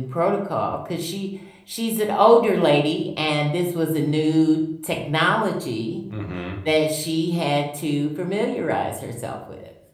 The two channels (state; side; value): identical; both; correlation 1.00